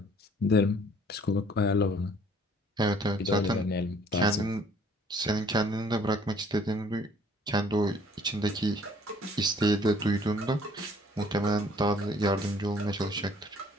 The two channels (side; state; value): both; normal; correlation 0.57